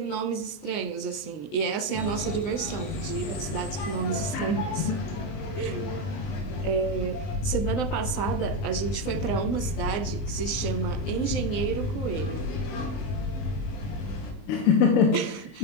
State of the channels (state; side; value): late; right; 19 ms